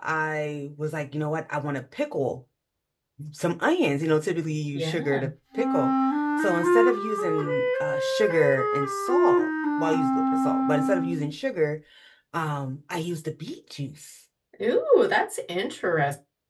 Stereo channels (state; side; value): identical; both; correlation 1.00